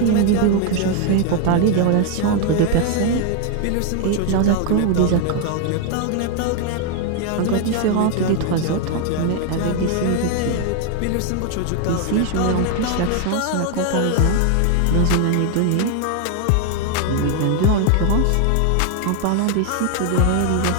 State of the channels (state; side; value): different; both; correlation 0.01